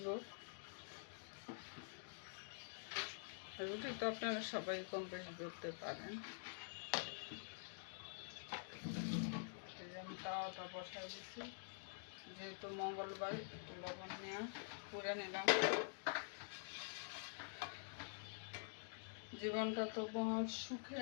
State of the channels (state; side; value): silent; right; digital silence